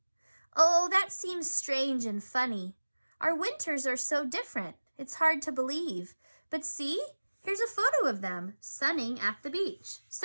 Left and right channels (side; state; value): both; inverted; correlation -1.00